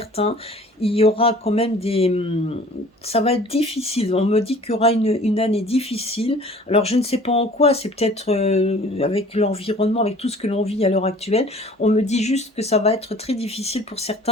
il y aura quand même ça va être difficile. On me dit qu'il y aura une année difficile. Alors je ne sais pas en quoi, c'est peut-être avec l'environnement, avec tout ce que l'on vit à l'heure actuelle. On me dit juste que ça va être très difficile pour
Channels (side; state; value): both; normal; correlation 0.49